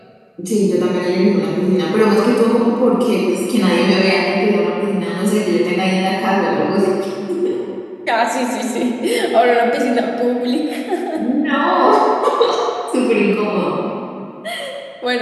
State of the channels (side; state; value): both; identical; correlation 1.00